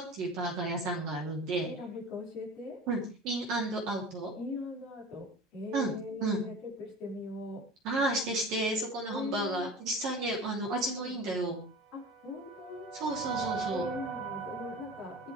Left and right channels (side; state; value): both; normal; correlation 0.37